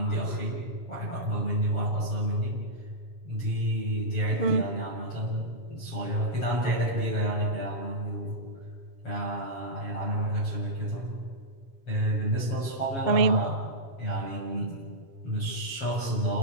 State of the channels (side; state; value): right; late; 7.3 ms